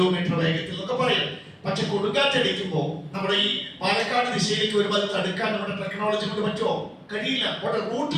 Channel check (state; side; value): identical; both; correlation 1.00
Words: വേഗത്തിൽ എന്നൊക്കെ പറയാം. പക്ഷെ കൊടുങ്കാറ്റടിക്കുമ്പോൾ നമ്മുടെ ഈ പാലക്കാട് ദിശയിലേക്ക് വരുമ്പോൾ അത് തടുക്കാൻ നമ്മുടെ ടെക്നോളജി കൊണ്ട് പറ്റുമോ? കഴിയില്ല. പോട്ടെ, റൂട്ട്